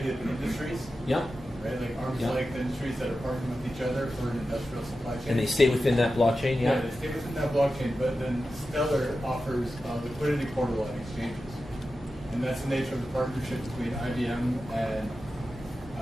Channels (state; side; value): normal; both; correlation 0.92